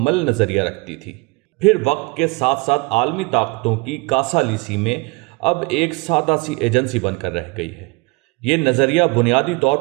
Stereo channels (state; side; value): quieter; left; 27.4 dB